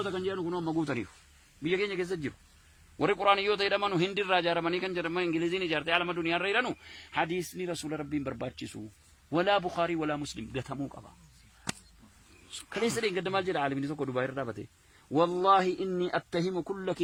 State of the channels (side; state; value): both; identical; correlation 1.00